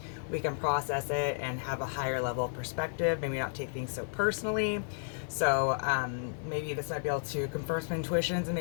we can process it and have a higher level of perspective, maybe not take things so personally. So maybe this might be able to confirm some intuitions and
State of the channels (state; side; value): silent; right; digital silence